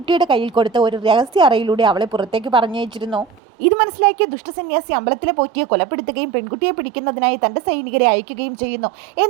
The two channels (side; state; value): left; drops out; at 3.4 s